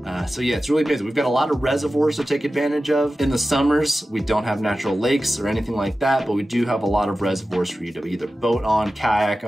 So yeah, it's really amazing. We've got a lot of reservoirs to take advantage of. In the summers, we don't have natural lakes or anything like that, but we do have a lot of reservoirs for you to either boat on, kayak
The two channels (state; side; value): normal; both; correlation 0.94